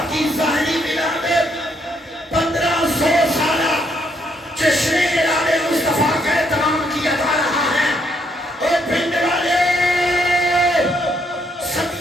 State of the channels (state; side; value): normal; both; correlation 0.73